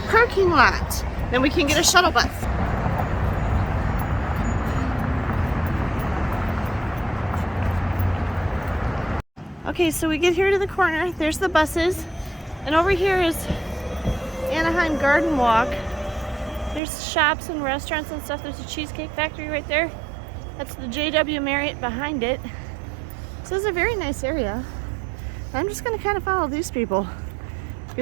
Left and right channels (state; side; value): drops out; left; at 16.8 s